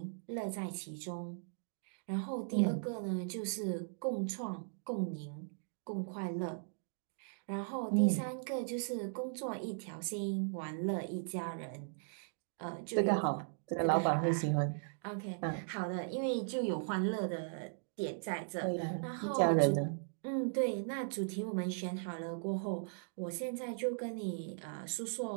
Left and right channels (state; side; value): silent; left; digital silence